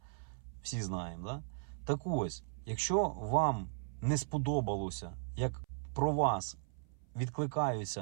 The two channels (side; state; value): left; silent; 53 dB below the other